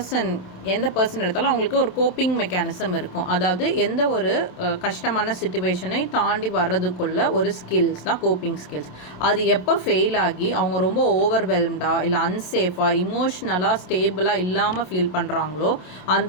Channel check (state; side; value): late; right; 27 ms